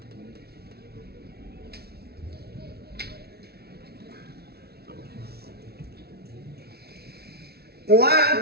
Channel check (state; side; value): late; left; 0.46 ms